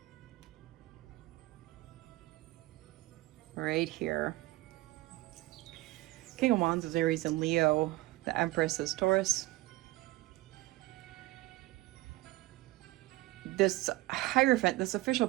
Right here. King of Wands is Aries and Leo. The Empress is Taurus. This Hierophant, this official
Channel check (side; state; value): left; quieter; 18.9 dB